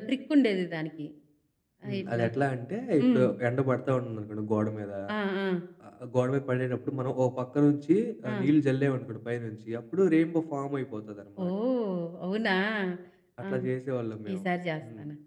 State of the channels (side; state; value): both; identical; correlation 1.00